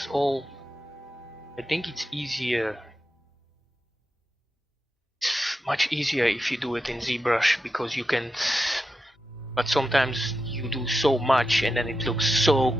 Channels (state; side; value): normal; both; correlation 0.89